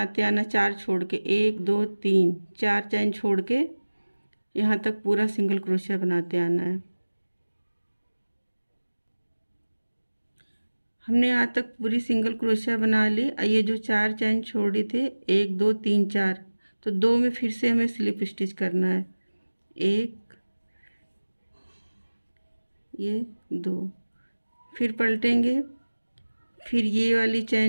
आना, 4 छोड़ के, 1 2 3 4 चैन छोड़ के यहाँ तक पूरा सिंगल क्रोशिया बनाते आना है। हमने यहाँ तक पूरी सिंगल क्रोशिया बना ली। ये जो 4 चैन छोड़ी थे, 1 2 3 4, तो 2 में फिर से हमें स्लिप स्टिच करना है। 1 ये 2, फिर पलटेंगे। फिर ये वाली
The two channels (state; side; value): inverted; both; correlation -1.00